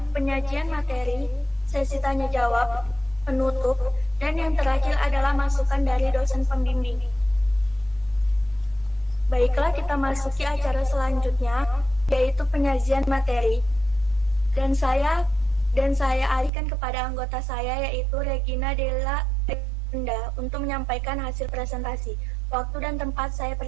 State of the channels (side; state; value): left; drops out; at 16.5 s